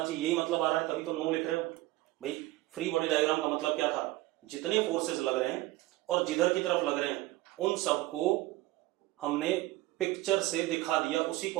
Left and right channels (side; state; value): left; quieter; 18.2 dB